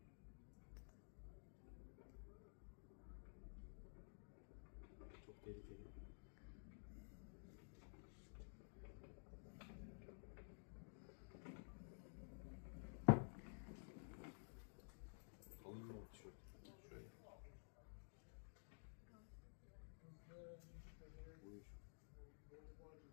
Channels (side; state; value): right; silent; digital silence